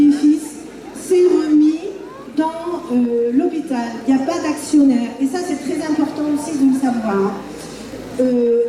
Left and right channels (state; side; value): identical; both; correlation 1.00